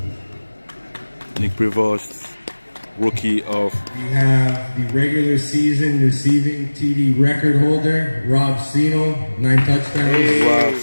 Nick Provost, rookie of. We have the regular season receiving TD record holder, Rob Sino, 9 touchdowns. Rob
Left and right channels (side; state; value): both; inverted; correlation -1.00